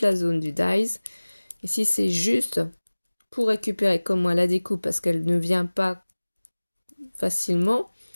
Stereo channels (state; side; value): inverted; both; correlation -1.00